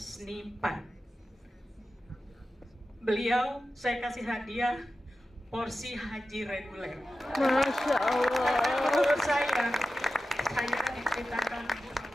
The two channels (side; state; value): both; normal; correlation 0.94